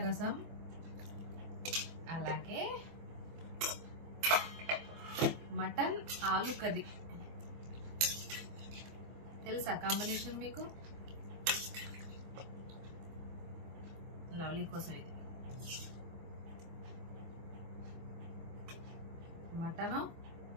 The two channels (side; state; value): left; late; 24 ms